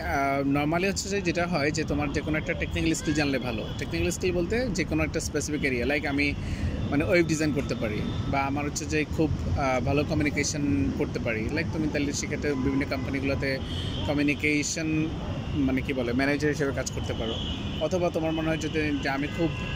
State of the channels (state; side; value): identical; both; correlation 1.00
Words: নর্মালি হচ্ছে যে যেটা হয় যে তোমার যে কোনো একটা টেকনিক্যাল স্কিল জানলে ভালো। টেকনিক্যাল স্কিল বলতে যে কোনো একটা স্পেসিফিক এরিয়া, লাইক আমি মানে ওয়েব ডিজাইন করতে পারি, বা আমার হচ্ছে যে খুব ভালো কমিউনিকেশন করতে পারি, লাইক তুমি তাহলে সেক্ষেত্রে বিভিন্ন কোম্পানিগুলোতে কমিউনিকেশন মানে কী বলে ম্যানেজার হিসেবে কাজ করতে পারো। অথবা তোমার মনে হয় যদি যে আমি খুব